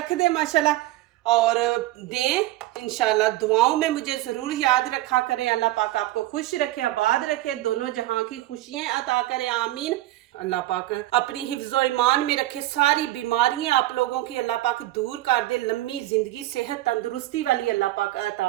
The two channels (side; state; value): left; quieter; 16.3 dB